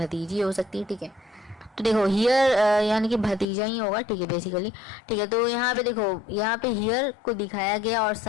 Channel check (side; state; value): right; drops out; at 3.5 s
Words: हो सकती है, ठीक है। तो देखो हियर यानी कि भतीजा ही होगा, ठीक है, बेसिकली, ठीक है। तो यहाँ पे देखो, यहाँ पे हियर को दिखाया गया और